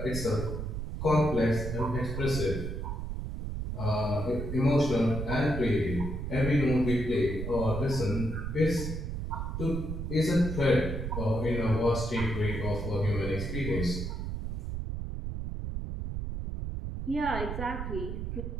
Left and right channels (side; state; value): right; noise; rumble, 4 dB below the sound